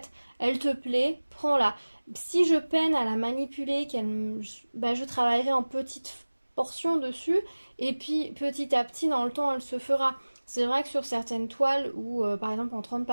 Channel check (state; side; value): inverted; both; correlation -1.00